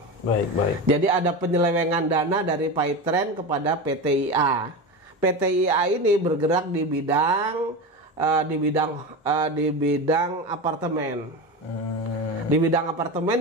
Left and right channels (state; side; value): normal; both; correlation 0.23